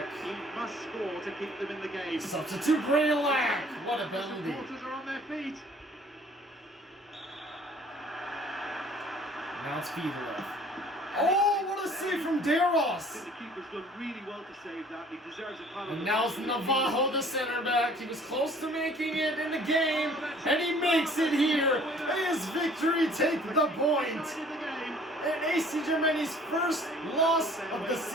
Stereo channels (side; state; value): both; normal; correlation 0.54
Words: He must score to keep them in the game. Substitute Greylack! What a penalty. The supporters are on their feet. Now it's Fiedler. Oh, what a save from Deros! The keeper's done really well to save that. He deserves a penalty. And now it's Navajo, the center back. He was close to making it in the game, and he makes it here. AS Victorie take the point. And AC Gemini's first loss of the